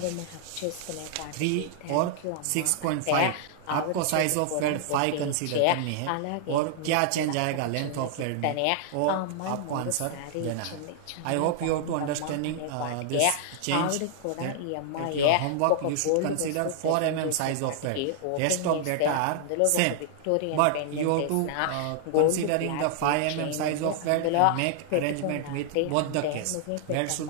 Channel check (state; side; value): different; both; correlation -0.01